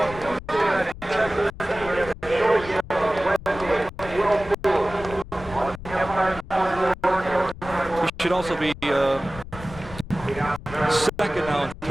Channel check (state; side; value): noise; left; rumble, 14 dB below the sound